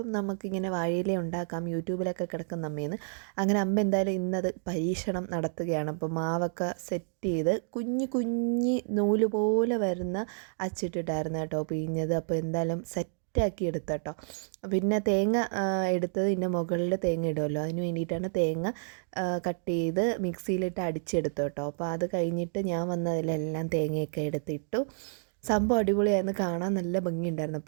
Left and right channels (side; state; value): left; silent; digital silence